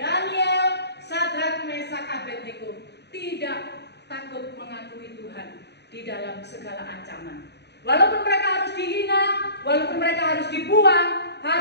Sadrak, Mesak, Abednego tidak takut mengakui Tuhan di dalam segala ancaman. Walaupun mereka harus dihina, walaupun mereka harus dibuang,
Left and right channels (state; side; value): late; right; 0.49 ms